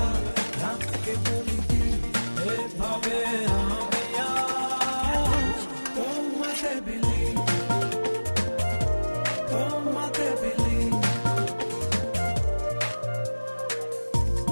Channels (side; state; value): both; inverted; correlation -1.00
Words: রাতকে বলি দিন, এভাবে আমি আজ তোমাতে বিলি, তোমাতে বিলি।